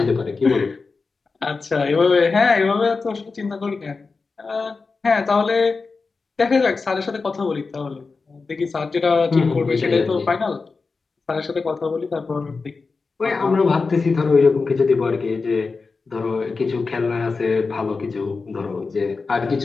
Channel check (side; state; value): right; quieter; 4.3 dB